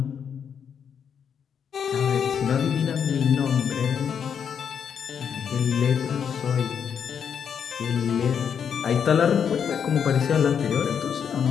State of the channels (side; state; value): right; quieter; 7.6 dB